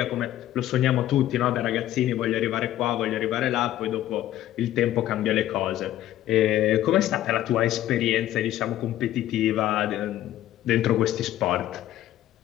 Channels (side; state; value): right; quieter; 13.2 dB